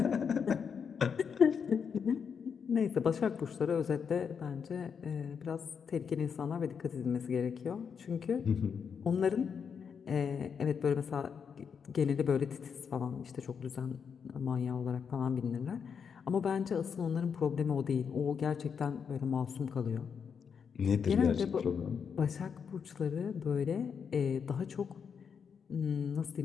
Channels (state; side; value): quieter; right; 6.6 dB